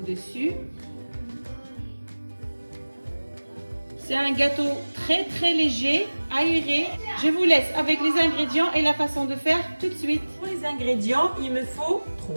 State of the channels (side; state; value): both; inverted; correlation -1.00